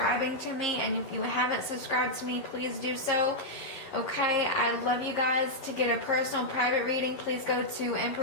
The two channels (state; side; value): late; right; 11 ms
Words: to me, and if you haven't subscribed to me, please do so. Okay, I love you guys. To get a personal private reading, please go to